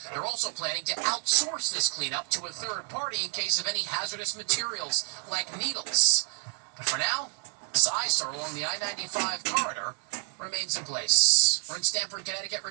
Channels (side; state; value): left; quieter; 39.9 dB